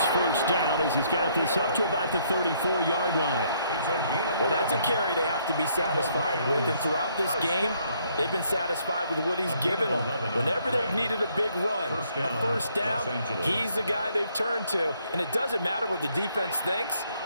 1st down as he's got this up to about the 34-yard line. Well, that's a carry they have to be satisfied with. And throughout this game, they've been satisfied with what he's given them. Whenever they've needed a big run, a 1st down, he's the guy they've turned to. And it doesn't matter what the defense thinks.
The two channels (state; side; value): inverted; both; correlation -0.68